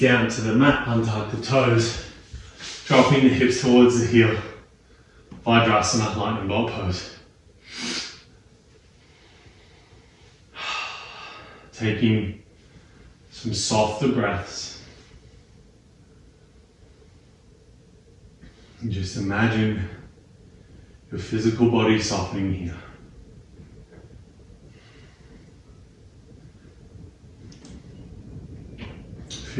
to the mat, untuck the toes, dropping the hips towards the heel. Vajrasana, lightning bolt pose. Taking some softer breaths. And just imagine your physical body softening here.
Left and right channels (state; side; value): identical; both; correlation 1.00